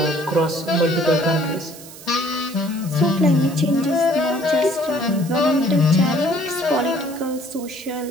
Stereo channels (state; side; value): noise; right; hiss, 17 dB below the sound